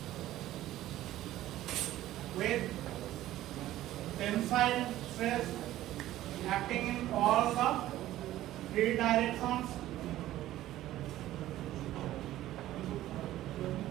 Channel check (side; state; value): left; quieter; 14.4 dB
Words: with tensile stress acting in all the 3 directions.